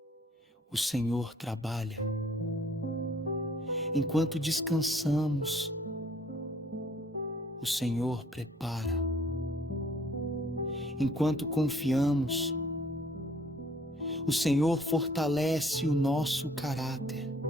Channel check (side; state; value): both; normal; correlation 0.59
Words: o Senhor trabalha. Enquanto descansamos, o Senhor prepara. Enquanto confiamos, o Senhor fortalece o nosso caráter.